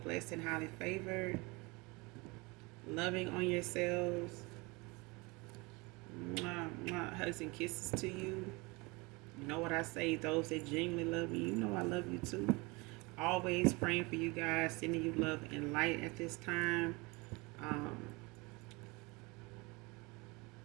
blessed, and highly favored. Loving on yourselves. Mwah, mwah, hugs and kisses to you. You know what I say, those that genuinely love me, you know I love you too. Always praying for you guys, sending you love and light at this time.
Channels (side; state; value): left; quieter; 26.0 dB